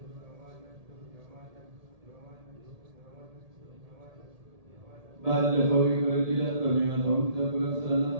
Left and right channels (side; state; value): left; late; 1.7 ms